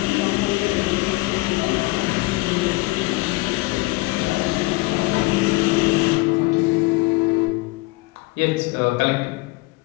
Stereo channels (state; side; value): quieter; right; 23.0 dB